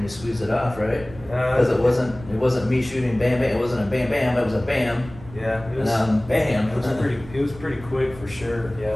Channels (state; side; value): noise; right; rumble, 17 dB below the sound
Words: you squeezed it off, right? Because it wasn't me shooting bam bam. It wasn't a bam bam. It was a bam. Yeah, it was. Bam. It was pretty quick for sure. Yeah,